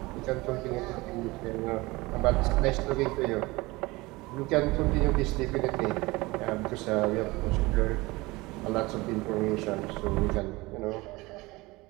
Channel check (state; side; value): quieter; left; 22.0 dB